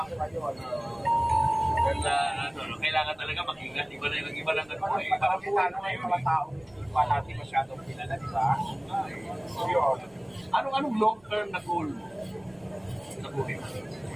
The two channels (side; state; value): right; noise; rumble, 29 dB below the sound